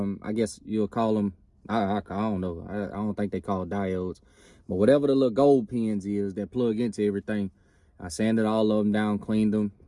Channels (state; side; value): identical; both; correlation 1.00